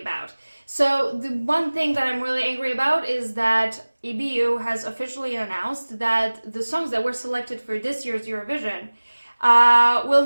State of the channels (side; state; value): both; inverted; correlation -1.00